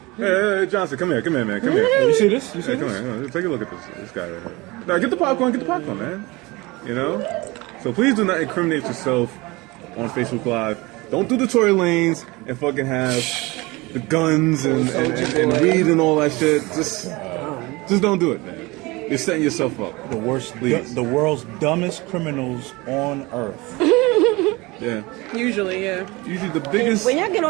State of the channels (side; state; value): left; quieter; 23.2 dB